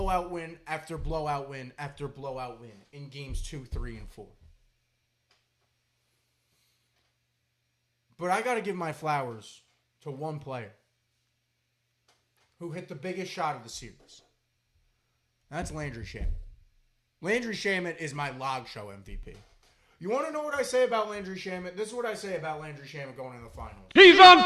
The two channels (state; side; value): identical; both; correlation 1.00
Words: win after blowout win after blowout win in games 2, 3, and 4. But I got to give my flowers to one player who hit the biggest shot of the series. That's Landry Shamet. Landry Shamet is my log show MVP. You want to know what I say about Landry Shamet? This is what I say about Landry Shamet going into the finals. He's